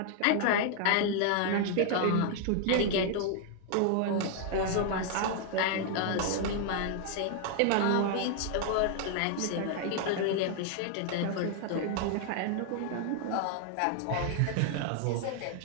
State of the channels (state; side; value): different; both; correlation 0.00